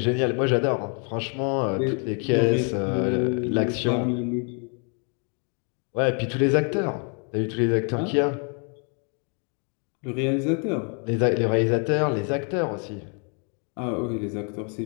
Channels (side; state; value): right; quieter; 39.5 dB